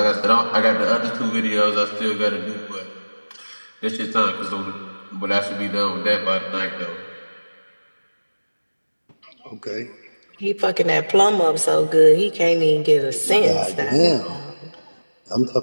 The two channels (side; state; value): both; inverted; correlation -1.00